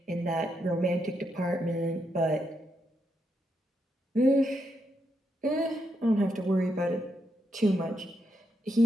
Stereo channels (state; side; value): normal; both; correlation 0.81